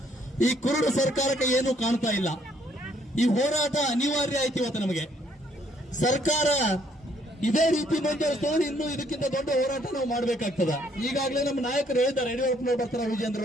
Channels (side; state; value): both; normal; correlation 0.67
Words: ಈ ಕುರುಡು ಸರ್ಕಾರಕ್ಕೆ ಏನೂ ಕಾಣ್ತಾ ಇಲ್ಲ. ಈ ಹೋರಾಟ ಅನಿವಾರ್ಯ ಆಯ್ತು ಇವತ್ತು ನಮಗೆ. ಸರ್ಕಾರ ಇದೇ ರೀತಿ ಮುಂದುವರಿಸಿದ್ರೆ ಇನ್ನೂ ಇದಕ್ಕಿಂತ ದೊಡ್ಡ ಹೋರಾಟ ನಾವು ಮಾಡಬೇಕಾಗ್ತದ. ಈಗಾಗಲೇ ನಮ್ಮ ನಾಯಕರು ಹೇಳಿದ್ದಾರೆ, ಯಡಿಯೂರಪ್ಪನವರು ಬರ್ತಾರ,